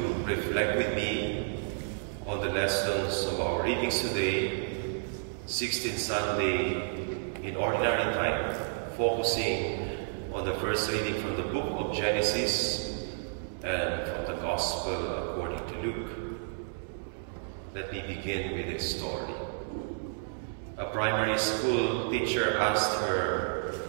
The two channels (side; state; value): left; silent; digital silence